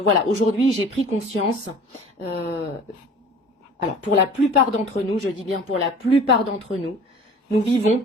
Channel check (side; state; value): both; normal; correlation 0.45